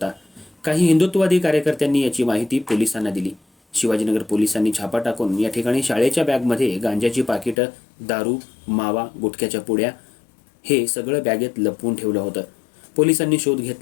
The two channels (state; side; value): drops out; right; at 7.6 s